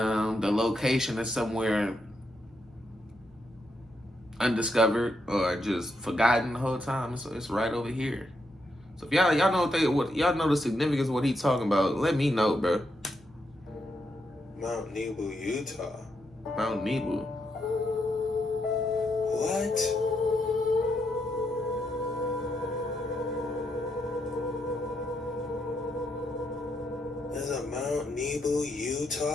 location is somewhere undiscovered or just forgotten the whole time. So it's right over here. So if y'all know what y'all know the significance of what he talking about, let me know, bro. Mount Nebo, Utah. Mount Nebo. What? There's a Mount Nebo,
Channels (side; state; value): right; noise; hum, 28 dB below the sound